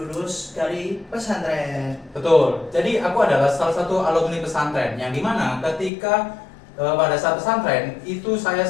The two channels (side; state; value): right; drops out; at 5.9 s